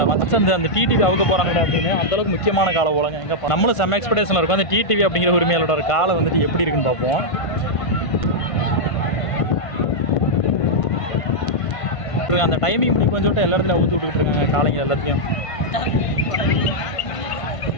மற்ற அந்த டிடிவி அவுக்க போகிறாங்கடா அப்படின்னு. அந்தளவுக்கு முக்கியமான காலை போலங்க. எங்கே நம்மளும் செம்ம எக்ஸ்பெக்டேஷனில் இருக்கும். அந்த டிடிவி அப்படிங்கிற உரிமையாளரோட ஒரு காலை வந்துட்டு எப்படி இருக்குன்னு பார்ப்போம். அந்த டைமிங் இப்படி கொஞ்சம் எல்லா இடத்துல ஊற்றி விட்டுக்கிட்டு இருக்காங்க காலைங்க எல்லாத்தையும்.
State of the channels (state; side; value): late; right; 1.5 ms